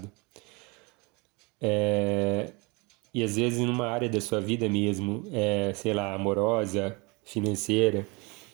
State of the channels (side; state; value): left; quieter; 27.7 dB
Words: E às vezes numa área da sua vida mesmo, sei lá, amorosa, financeira,